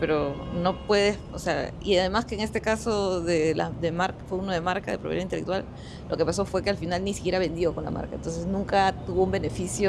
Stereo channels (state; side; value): identical; both; correlation 1.00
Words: no puedes, o sea, y además que en este caso de marca, fue uno de marca, de propiedad intelectual, lo que pasó fue que al final ni siquiera vendió con la marca, entonces nunca tuvo un